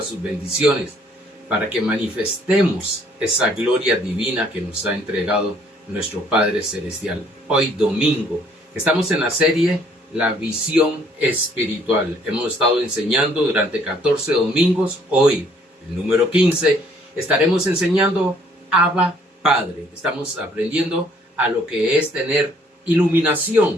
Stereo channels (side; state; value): both; normal; correlation 0.62